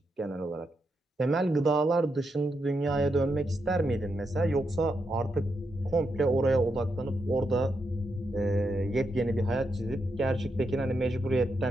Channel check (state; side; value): normal; both; correlation 0.83